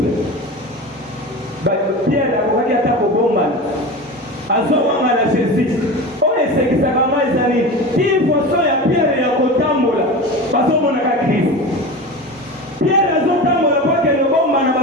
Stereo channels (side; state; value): both; normal; correlation 0.29